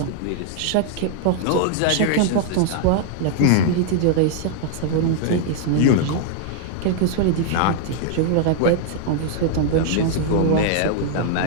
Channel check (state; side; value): different; both; correlation -0.01